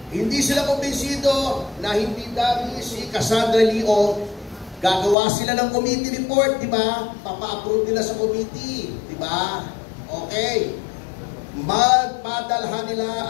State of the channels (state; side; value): drops out; right; at 5.2 s